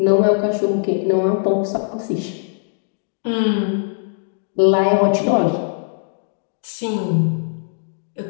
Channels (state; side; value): silent; right; digital silence